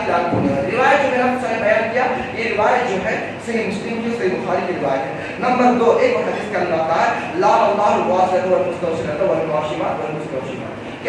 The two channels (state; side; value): identical; both; correlation 1.00